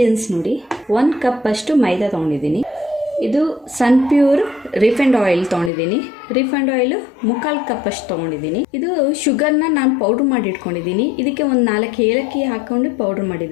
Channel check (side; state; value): right; drops out; at 5.7 s